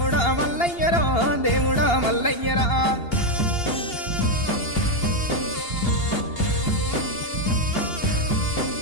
మల్లయ్యరో దేవుడా మల్లయ్యరా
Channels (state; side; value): late; right; 2.8 ms